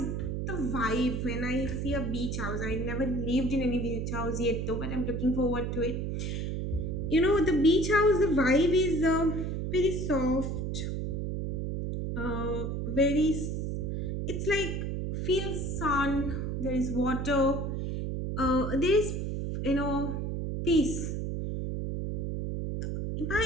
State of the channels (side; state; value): right; noise; hum, 2 dB below the sound